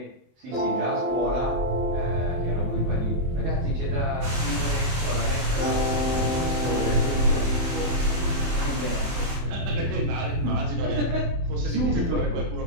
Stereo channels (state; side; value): late; left; 24 ms